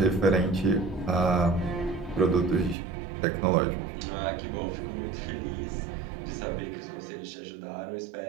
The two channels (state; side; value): drops out; left; at 2.8 s